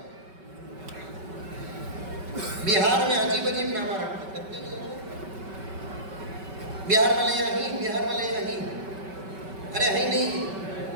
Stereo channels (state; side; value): late; left; 5.2 ms